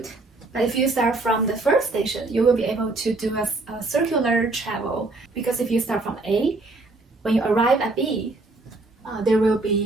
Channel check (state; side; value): quieter; left; 3.2 dB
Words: But if you start from the first station, you will be able to do a circular travel, because if you start from A, when you arrive at B, there will